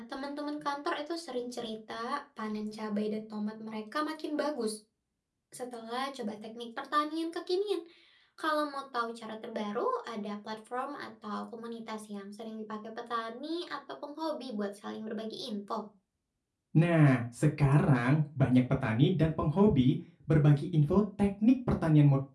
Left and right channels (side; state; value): both; identical; correlation 1.00